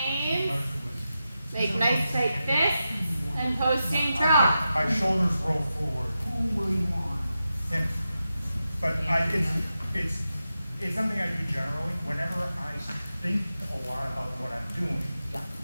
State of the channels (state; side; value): inverted; both; correlation -0.90